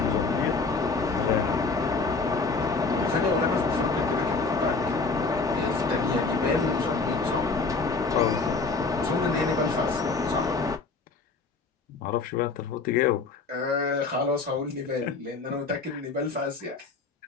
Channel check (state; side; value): quieter; right; 4.2 dB